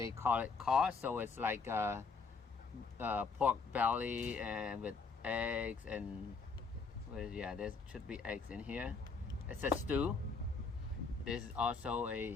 call it caw, so it's like pork belly and with eggs and yeah, there should be eggs in here. It's a stew. This is also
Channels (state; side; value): quieter; right; 4.7 dB